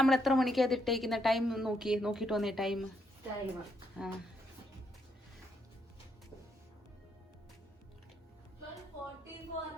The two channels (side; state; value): both; normal; correlation 0.76